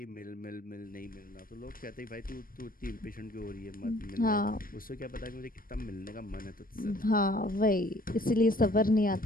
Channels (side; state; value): right; late; 0.41 ms